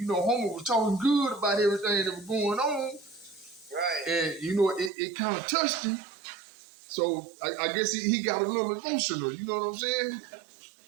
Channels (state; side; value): drops out; left; at 4.9 s